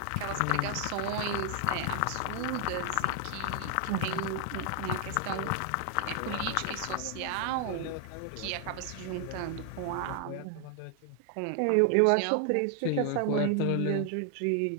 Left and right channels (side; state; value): both; different; correlation 0.00